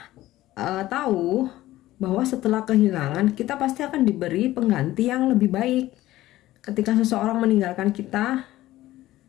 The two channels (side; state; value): right; quieter; 15.8 dB